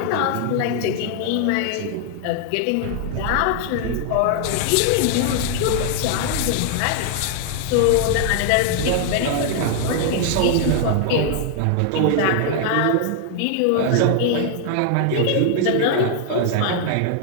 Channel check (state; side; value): different; both; correlation 0.00